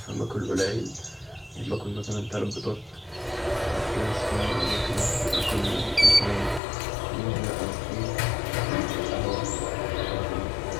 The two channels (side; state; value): right; drops out; at 6.6 s